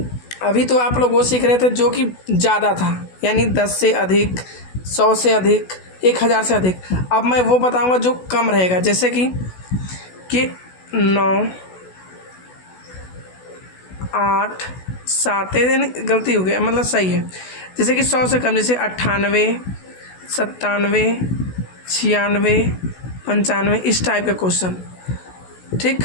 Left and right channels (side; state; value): right; late; 16 ms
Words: अभी तो आप लोग वो सीख रहे थे जो कि ज़्यादा था, यानी 10 से अधिक, 100 से अधिक, 1000 से अधिक। अब मैं वो बताऊंगा जो कम रहेगा, जैसे कि 9 8 7, यानी गलती हो गई, मतलब सही है। जैसे कि 100 से कम, जैसे 98 97 96 95, इस टाइप का क्वेश्चन, ठीक।